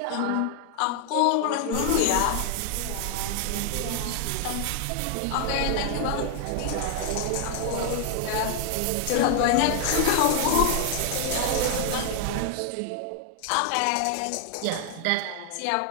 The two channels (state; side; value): different; both; correlation 0.00